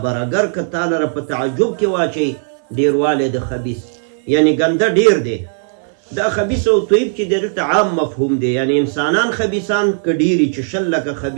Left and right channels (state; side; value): silent; left; 60 dB below the other